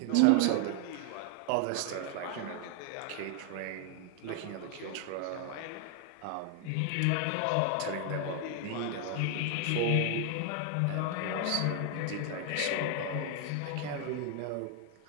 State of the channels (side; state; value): both; different; correlation 0.00